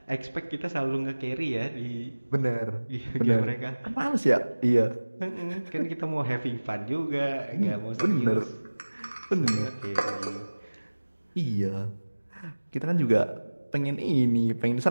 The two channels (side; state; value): both; inverted; correlation -1.00